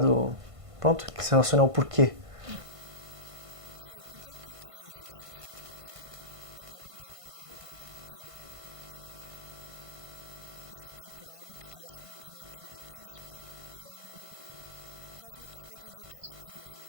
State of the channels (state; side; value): late; left; 1.5 ms